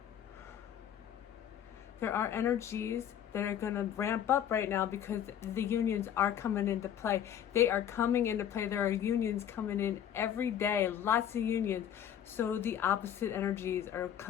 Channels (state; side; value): quieter; right; 9.8 dB